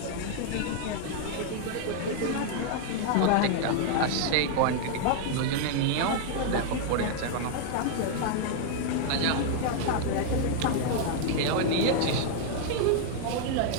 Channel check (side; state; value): both; different; correlation 0.00